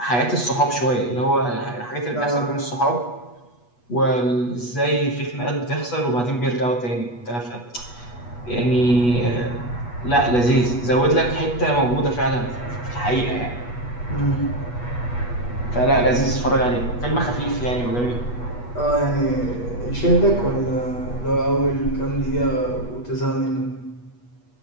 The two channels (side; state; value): right; late; 8.2 ms